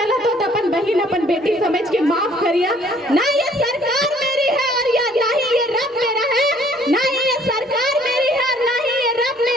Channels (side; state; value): both; normal; correlation 0.60